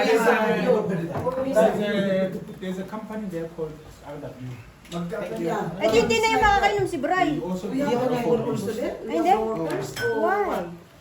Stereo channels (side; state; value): both; identical; correlation 1.00